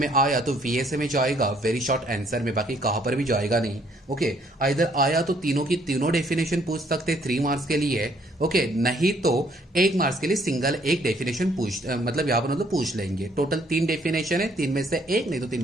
आया तो वीएसए में जाएगा, वेरी शॉर्ट आंसर में, बाकी कहां पर भी जाएगा नहीं। ओके, इधर आया तो तीनों की तीनों डेफिनेशन पूछ सकते 3 मार्क्स के लिए। ओके, नहीं तो 1 मार्क्स के लिए सिंगल एक डेफिनेशन मतलब यहां पर मतलब पूछ लेंगे। टोटल 3 डेफिनेशन है, 3 में से 1 नहीं तो 3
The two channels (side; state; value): both; normal; correlation 0.65